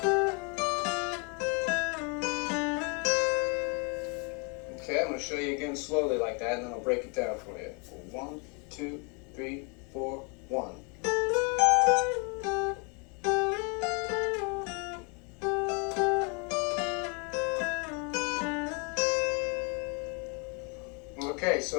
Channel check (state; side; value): quieter; right; 34.3 dB